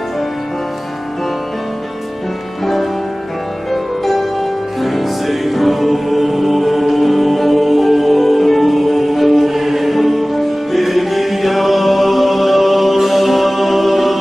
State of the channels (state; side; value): normal; both; correlation 0.98